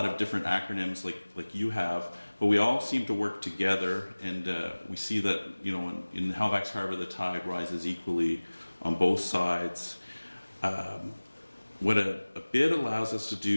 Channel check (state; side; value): inverted; both; correlation -1.00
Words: of different acronyms like you have, but we all seem to work together, and we see that, in Halifax Harbour, the tide rises equally on both sides. What a bid allows us to